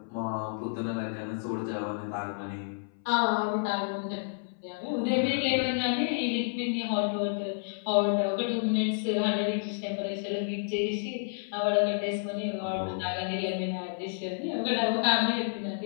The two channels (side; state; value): right; silent; 58 dB below the other